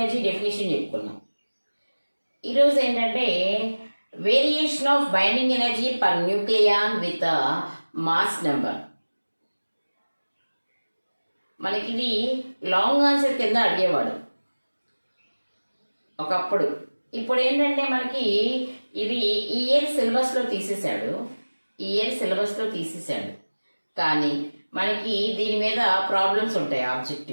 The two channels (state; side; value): inverted; both; correlation -1.00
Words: డెఫినేషన్ చెప్పుకున్నాం. ఈరోజు ఏంటంటే variation of binding energy per nucleon with mass number. మనకి ఇది లాంగ్ ఆన్సర్ కింద అడిగేవాడు ఒకప్పుడు. ఇప్పుడు ఏంటంటే మనకి ఇది ఈ ఇయర్ సిలబస్లో తీసేశాడు. కానీ మనకి దీని మీద ప్రాబ్లమ్స్ ఉంటాయి